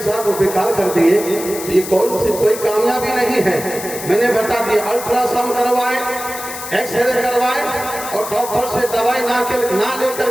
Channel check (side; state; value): left; noise; hiss, 10 dB below the sound